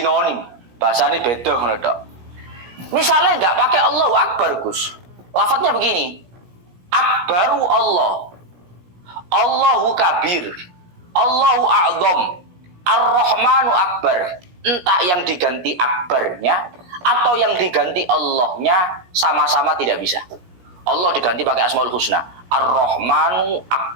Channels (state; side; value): late; left; 17 ms